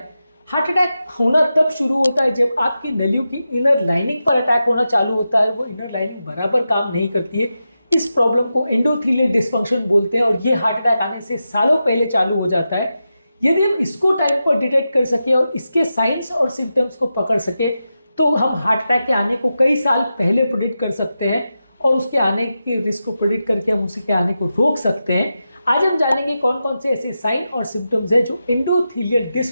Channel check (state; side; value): inverted; both; correlation -0.90